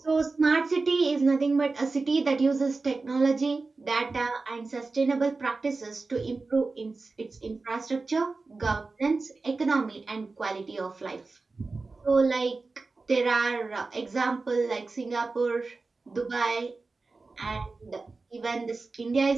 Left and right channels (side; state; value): left; quieter; 3.8 dB